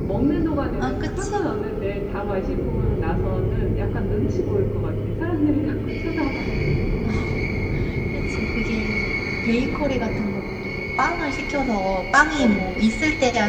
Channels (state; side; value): identical; both; correlation 1.00